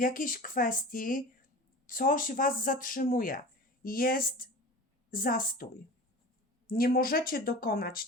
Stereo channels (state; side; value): normal; both; correlation 0.35